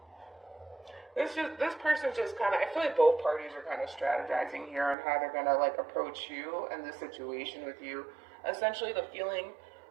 This person's just kind of, I feel like both parties are kind of strategizing here on how they're going to like approach you and the situation with you. Essentially the feeling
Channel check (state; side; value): drops out; left; at 5.0 s